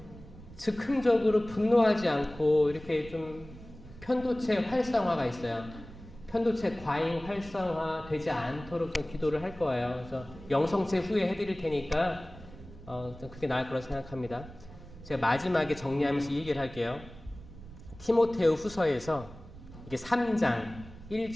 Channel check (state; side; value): noise; right; rumble, 17 dB below the sound